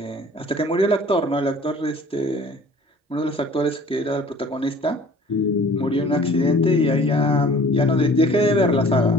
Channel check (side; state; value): both; normal; correlation 0.49